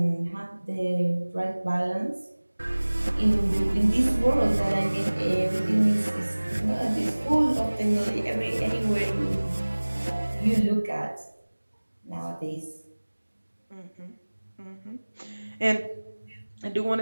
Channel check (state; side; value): inverted; both; correlation -1.00